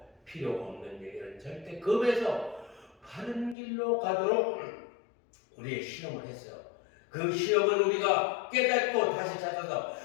필요 없는 얘기는 절대 겁에서 바른 길로 가도록 우리의 시험을 했어요. 그 시험은 우리가 깨닫고 다시 찾아서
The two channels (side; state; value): right; drops out; at 3.6 s